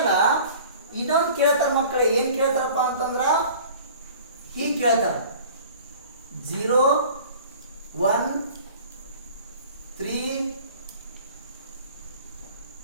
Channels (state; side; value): inverted; both; correlation -0.46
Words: ಇನ್ನೊಂದು ಕೇಳ್ತಾರ ಮಕ್ಕಳು, ಏನು ಕೇಳ್ತಾರಪ್ಪ ಅಂತಂದ್ರ ಹೀಗೆ ಕೇಳ್ತಾರ 0, 1, 3